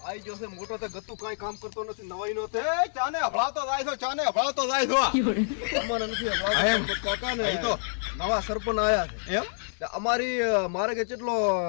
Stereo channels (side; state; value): right; silent; digital silence